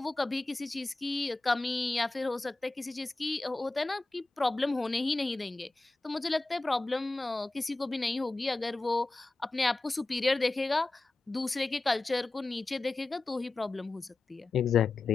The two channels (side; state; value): right; quieter; 3.3 dB